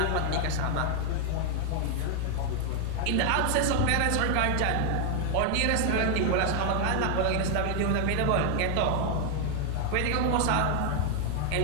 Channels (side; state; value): both; different; correlation 0.00